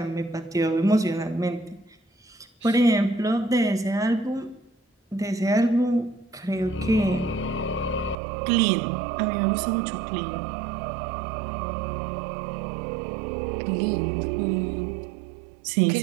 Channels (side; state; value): left; drops out; at 8.2 s